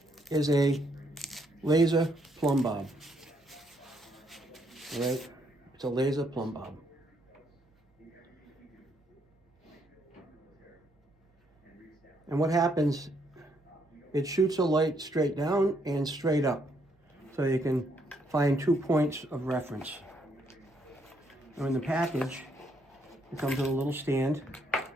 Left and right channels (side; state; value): both; normal; correlation 0.72